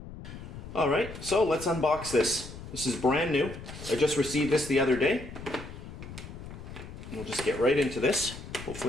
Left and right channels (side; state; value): left; noise; rumble, 12 dB below the sound